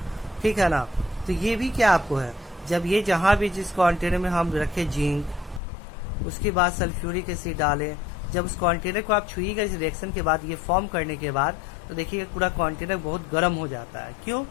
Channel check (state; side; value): drops out; right; at 5.6 s